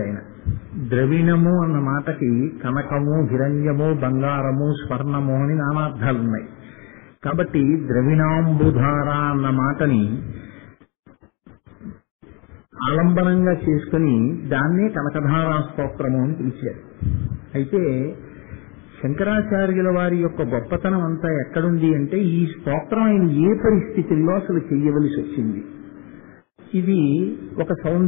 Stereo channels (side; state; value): right; quieter; 29.8 dB